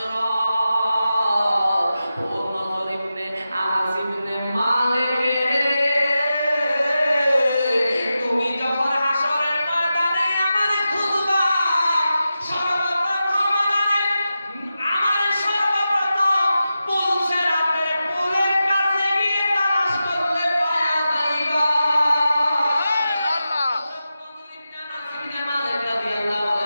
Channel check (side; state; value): both; inverted; correlation -0.91